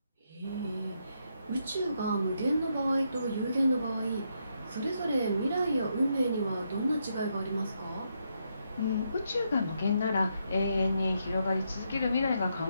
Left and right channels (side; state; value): both; inverted; correlation -0.79